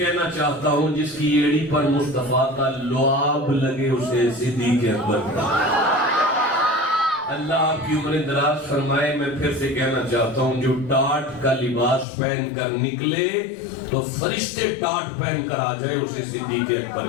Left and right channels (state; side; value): drops out; right; at 12.1 s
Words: چاہتا ہوں جس کی ایڑی پر مصطفیٰ کا لعاب لگے اسے صدیق اکبر کہتے ہیں. اللہ آپ کی عمریں دراز فرمائے. میں پھر سے کہنا چاہتا ہوں جو ٹاٹ کا لباس پہن کر نکلے تو فرشتے ٹاٹ پہن کر آ جائے اسے صدیق اکبر